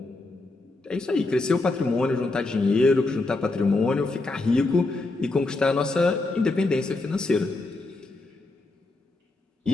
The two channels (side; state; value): right; quieter; 3.1 dB